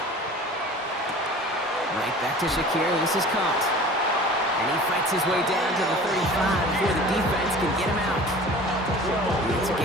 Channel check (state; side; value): normal; both; correlation 0.42